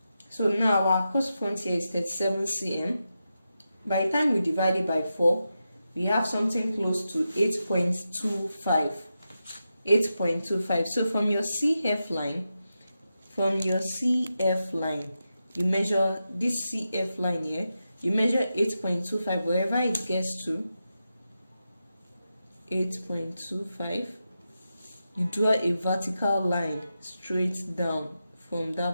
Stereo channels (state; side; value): inverted; both; correlation -0.89